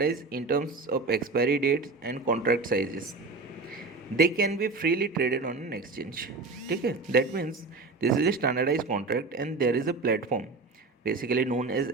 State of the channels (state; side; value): quieter; left; 3.7 dB